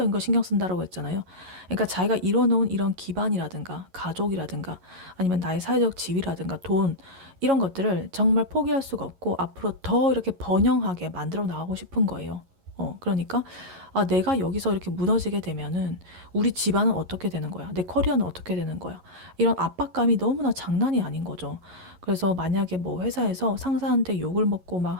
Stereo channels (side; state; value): left; late; 11 ms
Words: 거 신경 쓴다라고 했잖아요. 그러니까 자기가 이뤄놓은 이런 기반이라든가 가족이라든가 아니면 나의 사회적 지위라든가 돈 이런 것들을 정말 포기할 수가 없고 앞으로 더 이렇게 번영하게 만들어 나가고 싶은 거예요. 그러니까 내가 여기서 이렇게 무너지게 되면은 우리 집안은 어떻게 되는 거야? 내 커리어는 어떻게 되는 거야? 이런 압박감이 너무나 장난이 아닌 거죠. 그래서 만약에 뭐 회사에서 상사한테 욕을 먹고 막